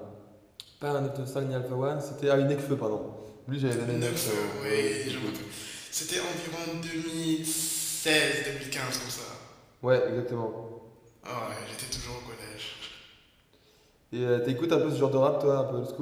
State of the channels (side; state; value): both; identical; correlation 1.00